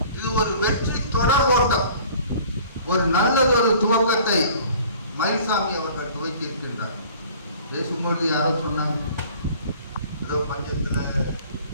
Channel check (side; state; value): both; inverted; correlation -0.49